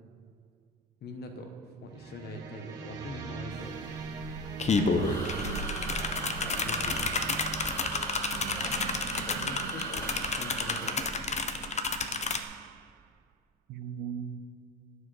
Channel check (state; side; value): normal; both; correlation 0.20